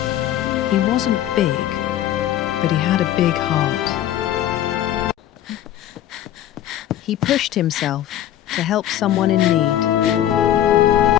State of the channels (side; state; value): right; quieter; 12.1 dB